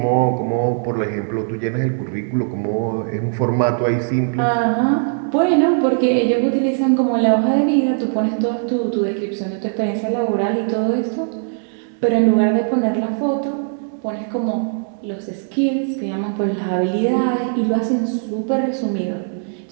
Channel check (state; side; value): silent; left; digital silence